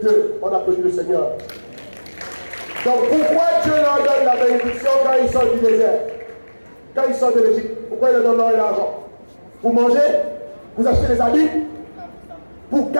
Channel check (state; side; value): inverted; both; correlation -1.00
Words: d'eux. On applaudit le Seigneur. Donc pourquoi Dieu leur donne la bénédiction quand ils sortent du désert? Quand ils sortent de l'Égypte, pourquoi il leur donne l'or et l'argent? Pour manger? Vous achetez des habits? Pour